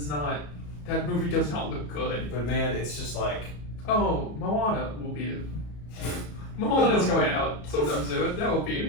not, that movie does not look good. But, man, it's just like... Oh, Moana will beat it. Moana's going out sometime soon. That will beat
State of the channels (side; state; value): right; late; 34 ms